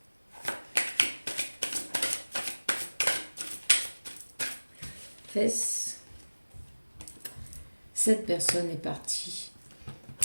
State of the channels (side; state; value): both; inverted; correlation -1.00